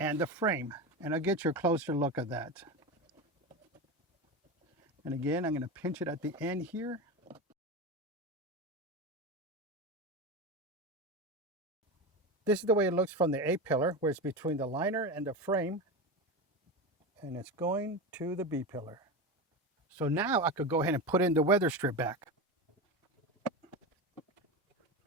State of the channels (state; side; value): normal; both; correlation 0.21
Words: the frame. And I'll get you a closer look at that. And again, I'm going to pinch it at the end here. This is the way it looks from the A-pillar, where it's between the liner and the frame. And it's going to the B-pillar. So now I could go ahead and put in the weather strip back.